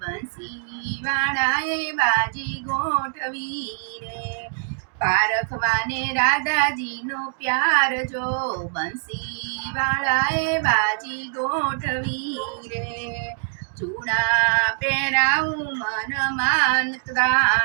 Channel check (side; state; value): left; silent; digital silence